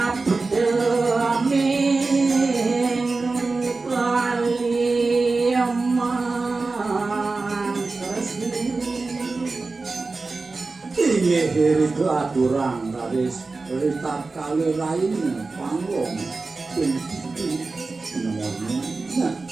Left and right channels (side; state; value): left; quieter; 3.8 dB